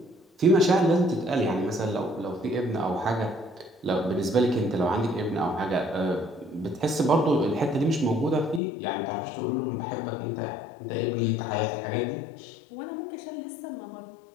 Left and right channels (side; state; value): right; drops out; at 8.6 s